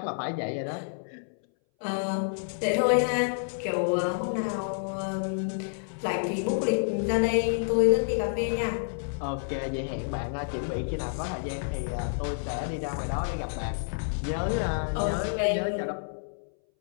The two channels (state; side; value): silent; right; 59 dB below the other